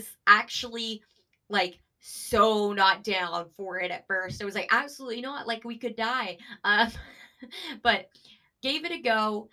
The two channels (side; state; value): both; identical; correlation 1.00